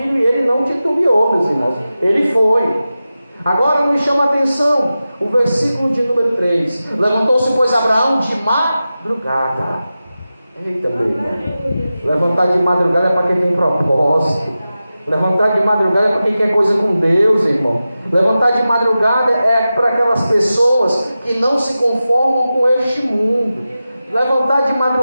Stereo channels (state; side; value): inverted; both; correlation -0.93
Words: e ele não titubeou, meus irmãos, ele foi. Agora me chama a atenção o versículo de número 3: levantou-se, pois, Abraão de madrugada. Eita, meu irmão. Levantar de madrugada é para quem tem propósito. Levantar de madrugada é para quem quer coisa com Deus, irmão. Levantar de madrugada é para aquelas pessoas que não se conformam com este mundo. Levantar de